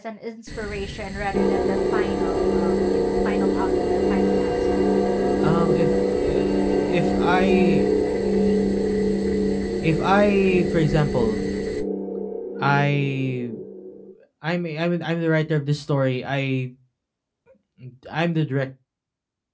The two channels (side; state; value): both; identical; correlation 1.00